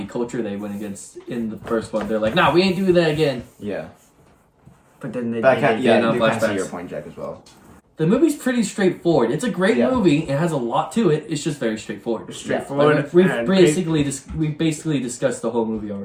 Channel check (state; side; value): identical; both; correlation 1.00